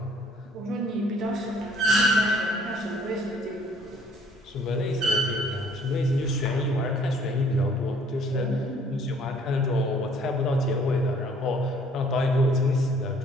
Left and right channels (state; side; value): normal; both; correlation 0.59